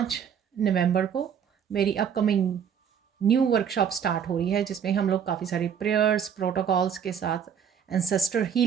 नवंबर को मेरी अपकमिंग न्यू वर्कशॉप स्टार्ट हो रही है, जिसमें हम लोग काफ़ी सारी प्रेयर्स प्रोटोकॉल्स के साथ एंसेस्टर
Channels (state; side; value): quieter; left; 7.9 dB